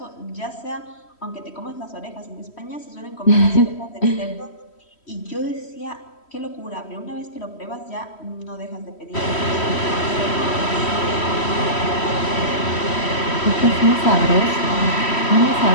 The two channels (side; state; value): right; late; 3.1 ms